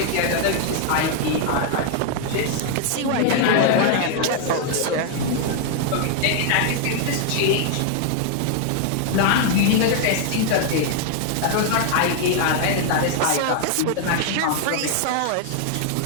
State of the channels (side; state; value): both; different; correlation 0.00